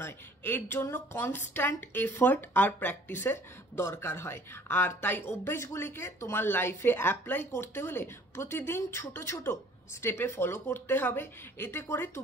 নয়, এর জন্য কনস্ট্যান্ট এফার্ট আর প্র্যাকটিসের দরকার হয়। আর তাই অভ্যেসগুলিকে তোমার লাইফে অ্যাপ্লাই করতে হলে প্রতিদিন ছোট ছোট স্টেপে ফলো করতে হবে, এতে করে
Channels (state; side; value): normal; both; correlation 0.54